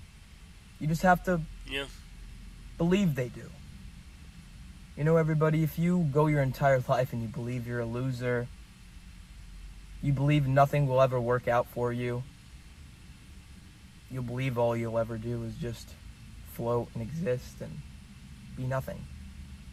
You just have to believe they do. Everybody, if you go your entire life and you believe you're a loser, you believe nothing will ever work out for you, you'll believe all you'll ever do is just float and exist and be nothing.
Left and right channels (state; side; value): identical; both; correlation 1.00